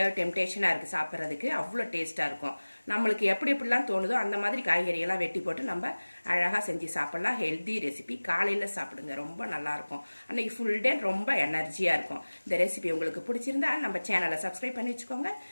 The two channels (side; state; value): both; inverted; correlation -1.00